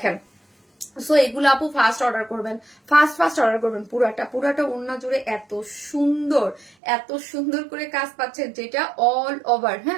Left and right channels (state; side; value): drops out; left; at 6.8 s